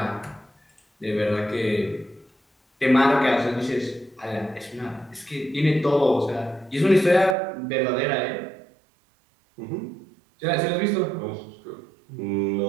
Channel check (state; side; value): drops out; left; at 7.4 s